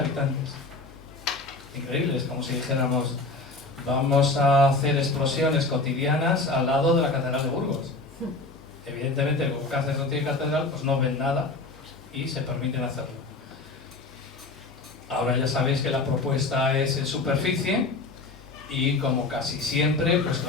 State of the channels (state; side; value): quieter; right; 3.4 dB